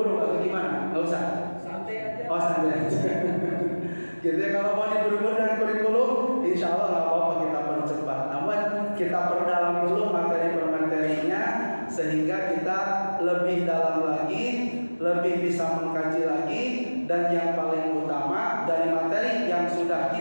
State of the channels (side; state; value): both; inverted; correlation -1.00